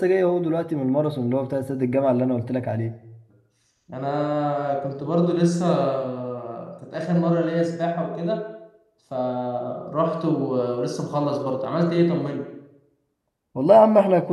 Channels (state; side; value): identical; both; correlation 1.00